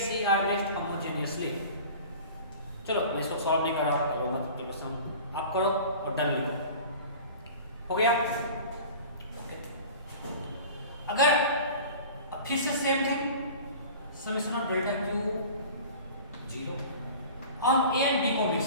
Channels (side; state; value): both; inverted; correlation -0.40